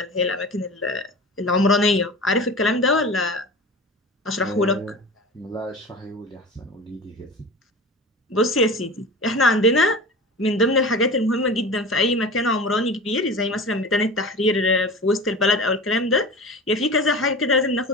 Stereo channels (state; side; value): normal; both; correlation 0.34